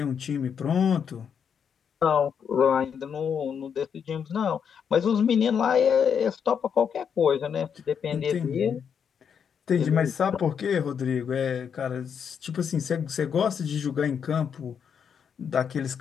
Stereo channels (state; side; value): quieter; right; 7.3 dB